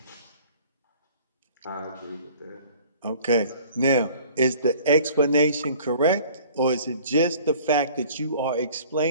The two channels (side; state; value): both; inverted; correlation -0.50